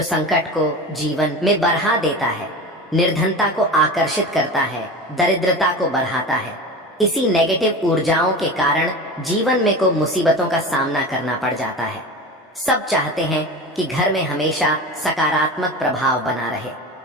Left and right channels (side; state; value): both; normal; correlation 0.30